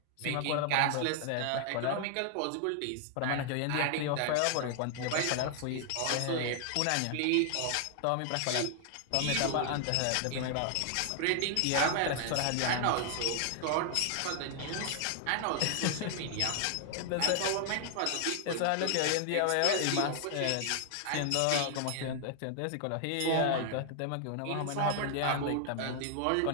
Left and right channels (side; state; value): both; different; correlation 0.00